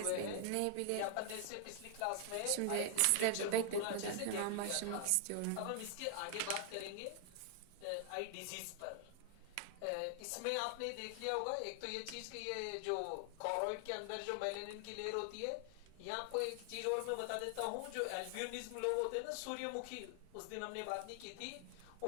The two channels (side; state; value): both; different; correlation 0.00